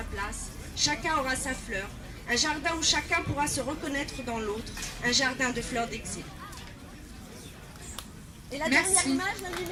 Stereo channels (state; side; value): identical; both; correlation 1.00